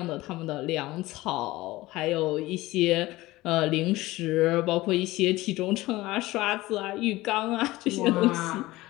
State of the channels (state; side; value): quieter; right; 18.7 dB